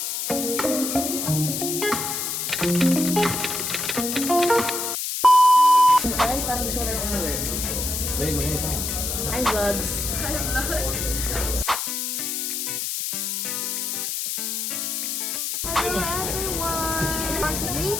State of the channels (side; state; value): left; noise; hiss, 2 dB below the sound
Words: parang gusto ko na lang gawin. May mga ito. Hi, vlogs. Hello everyone! For